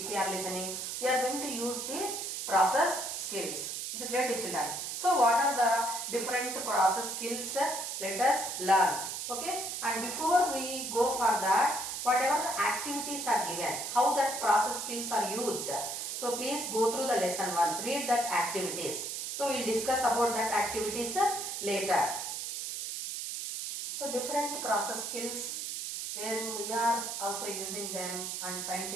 we are listening, we are going to use the process skills. Is it clear to children? So what are the different process skills? Let us learn. Okay, and before we go for that, whatever the activities are given, how that process skills are used, so please go through the lesson once, read that activities. So we will discuss about that activities later. So different process skills where we are also using them, and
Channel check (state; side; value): noise; right; hiss, 4 dB below the sound